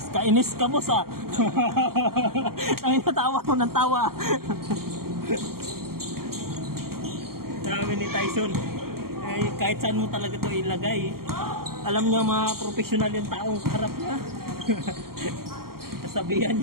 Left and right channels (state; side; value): late; left; 0.93 ms